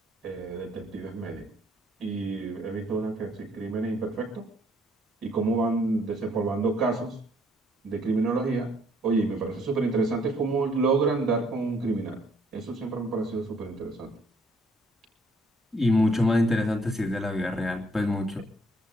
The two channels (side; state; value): both; normal; correlation 0.65